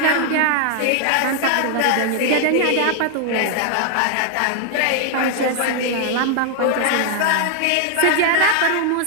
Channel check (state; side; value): different; both; correlation 0.00